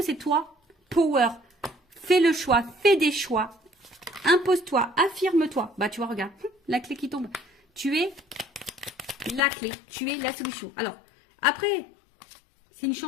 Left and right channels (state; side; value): drops out; right; at 9.4 s